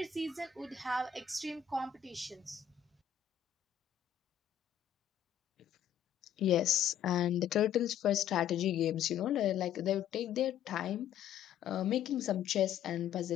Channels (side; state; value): right; quieter; 9.4 dB